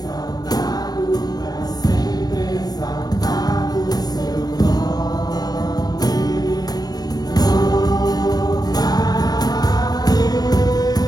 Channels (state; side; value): late; right; 0.19 ms